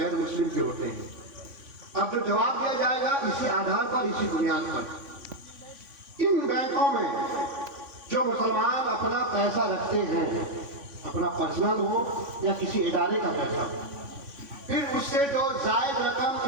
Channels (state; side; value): late; left; 3.5 ms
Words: मुस्लिम के होते हैं। अब जो जवाब दिया जाएगा इसी आधार पर, इसी बुनियाद पर। इन बैंकों में जो मुसलमान अपना पैसा रखते हैं, अपना पर्सनल हो या किसी इदारे का पैसा, फिर उससे जो जायद रकम